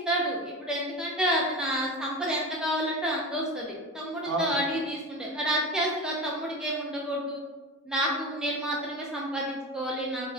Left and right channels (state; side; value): normal; both; correlation 0.27